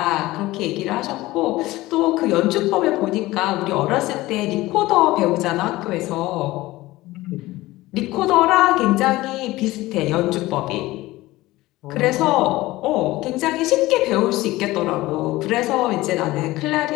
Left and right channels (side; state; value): right; quieter; 18.4 dB